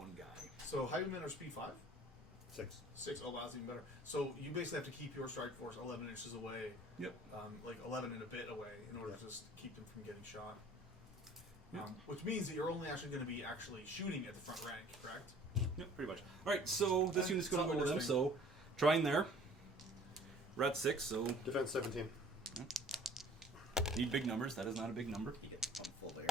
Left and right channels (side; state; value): both; normal; correlation 0.51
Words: guy? So Highwaymen are speed 5, 6. 6. Oh, wow, that's even better. So you basically have to keep your strike force 11 inches away, Yep. like 11 and a bit away, in order to just keep them from getting shot. Yep. Which means that you're only actually going to be actually shooting at the front rank, correct? Yep, pretty much. All right, so this unit's going to Something go with them. interesting. So trying there. We're at 6, so Defense 17. need big numbers. That is not a big number. You get pumped full of air